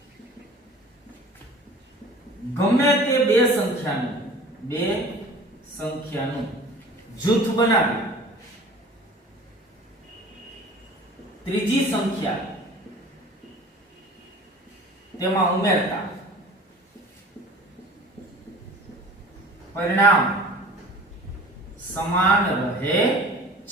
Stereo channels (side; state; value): both; normal; correlation 0.44